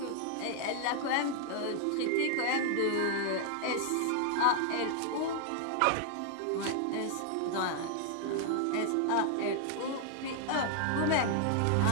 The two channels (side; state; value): both; different; correlation 0.00